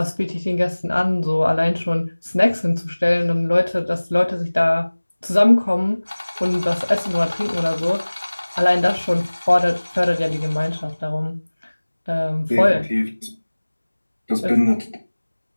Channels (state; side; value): inverted; both; correlation -1.00